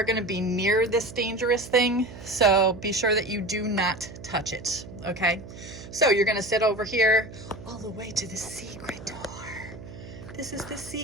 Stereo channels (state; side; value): noise; right; hum, 15 dB below the sound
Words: going to be near this dangerous thing. So be sure that you do not touch it. Okay. So you're going to sit over here all the way to the secret door. This is the